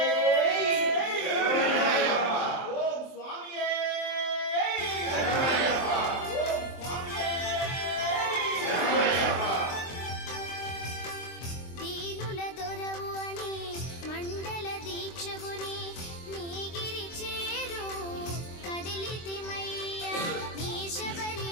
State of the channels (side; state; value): right; late; 23 ms